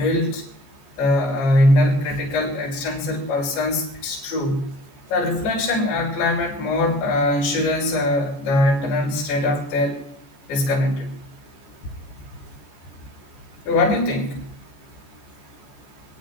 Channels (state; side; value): late; right; 14 ms